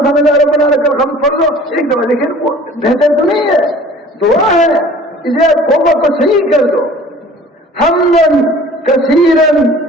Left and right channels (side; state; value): both; normal; correlation 0.47